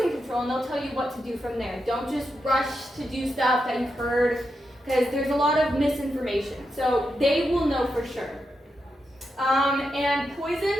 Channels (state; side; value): normal; both; correlation 0.86